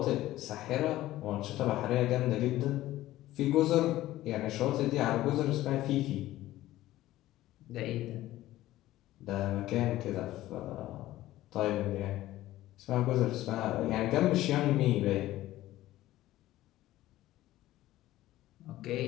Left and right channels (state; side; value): quieter; right; 15.4 dB